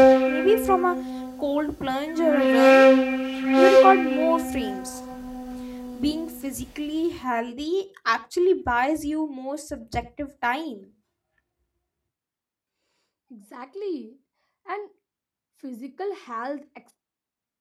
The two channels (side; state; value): both; identical; correlation 1.00